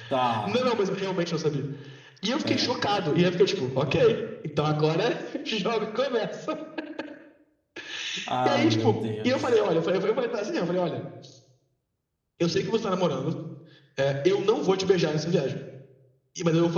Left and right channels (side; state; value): both; identical; correlation 1.00